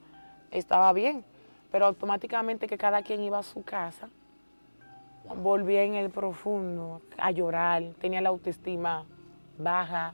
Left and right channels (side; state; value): both; inverted; correlation -1.00